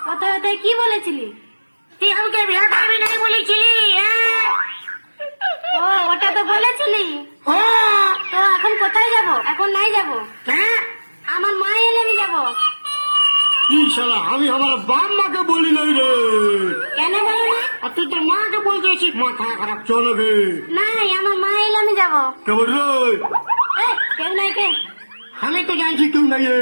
কোথায় কোথায় কি বলেছিলি? তুই আমাকে বিয়ে করবি নাই বলেছিলি? ও ওটা তো বলেছিলি। হ্যাঁ তো এখন কোথায় যাব? এখন নাই যাব, হ্যাঁ। আমার মা এলে আমি যাবো। ইনশাল্লাহ আমি আমার বাপ মাকে বলি নাই রে। কেন বলো না? আর তুই তোর মাকে বলতেছিস মাথা খারাপ চলবে। নাই, আমার মা এলে আমি যাবো। কেমন রে? কেউ নাই কে? আমি তো জানছি কেউ নাই।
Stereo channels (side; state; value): both; inverted; correlation -1.00